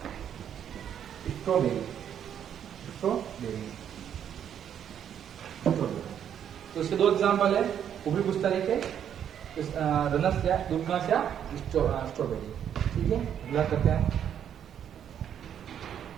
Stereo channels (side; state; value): left; quieter; 9.2 dB